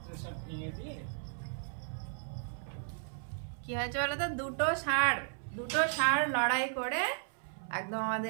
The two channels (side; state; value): left; silent; 54 dB below the other